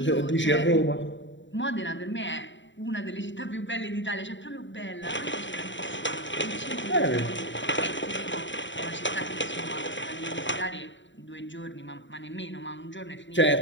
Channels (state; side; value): late; right; 0.54 ms